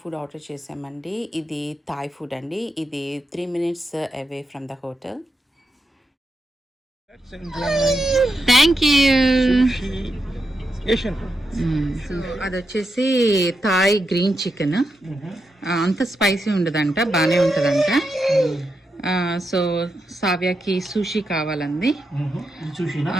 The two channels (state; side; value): normal; both; correlation 0.85